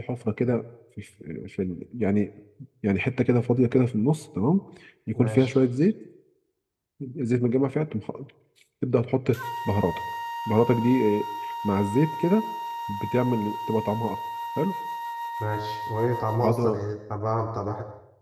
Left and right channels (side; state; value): both; identical; correlation 1.00